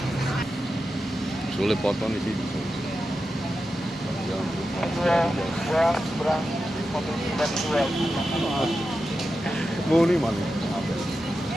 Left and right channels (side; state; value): both; normal; correlation 0.90